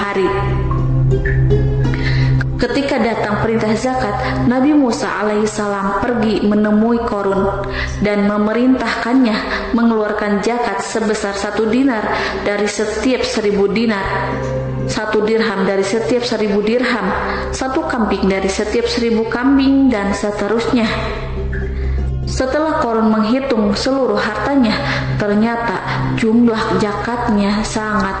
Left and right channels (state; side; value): identical; both; correlation 1.00